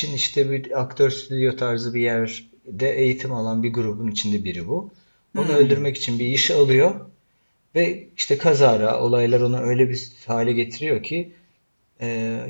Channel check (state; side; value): inverted; both; correlation -1.00